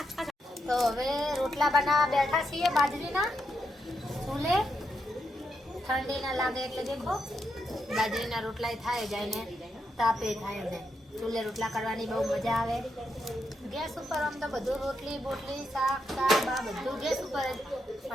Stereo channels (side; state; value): both; normal; correlation 0.82